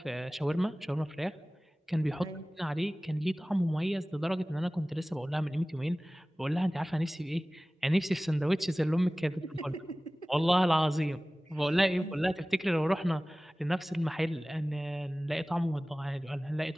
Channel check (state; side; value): normal; both; correlation 0.98